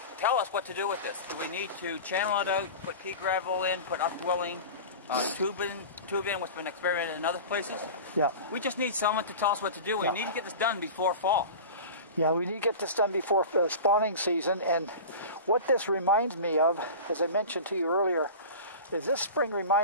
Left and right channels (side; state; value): both; inverted; correlation -0.33